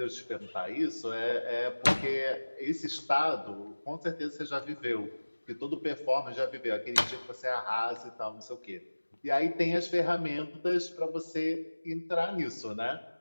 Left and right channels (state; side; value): inverted; both; correlation -1.00